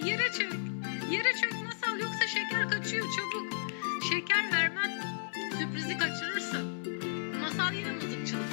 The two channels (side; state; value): right; silent; 55 dB below the other